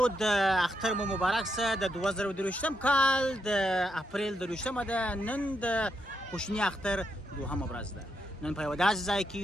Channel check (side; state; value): both; normal; correlation 0.81